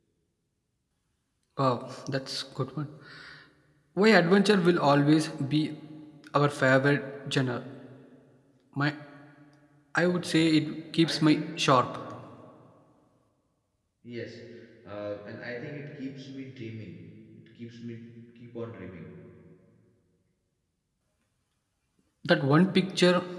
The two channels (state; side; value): identical; both; correlation 1.00